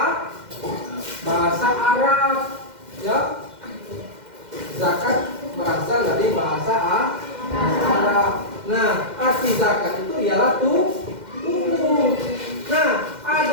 Arab, ya. Zakat berasal dari bahasa Arab. Nah, arti zakat itu ialah tumbuh. Nah,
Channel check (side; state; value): left; late; 2.1 ms